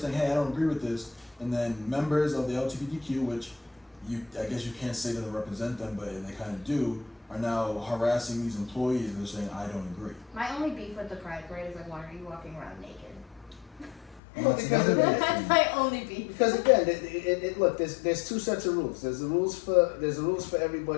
saying, hey, I don't agree with this, and then members of the LGBTQ, which I guess you can't say doesn't represent them, but they kind of do, are now harassing these employees and they're saying, I don't agree. My only beef with the Pride Parade is like, why are you walking around naked? Well, because of it. That's my only beef. Because again, look, there's two sets of rules. There's the rules for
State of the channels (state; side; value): drops out; right; at 14.2 s